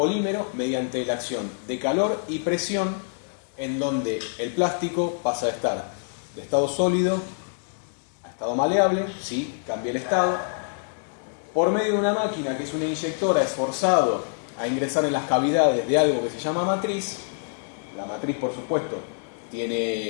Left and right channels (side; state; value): right; silent; digital silence